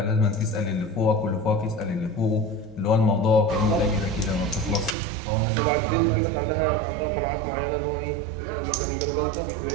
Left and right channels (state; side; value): drops out; left; at 5.0 s